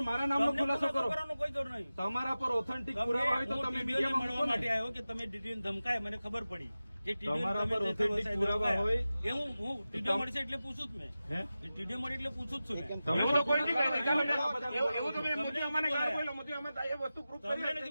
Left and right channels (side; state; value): both; inverted; correlation -0.95